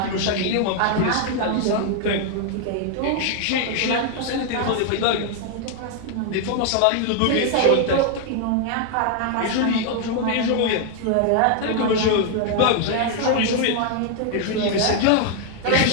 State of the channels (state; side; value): different; both; correlation 0.00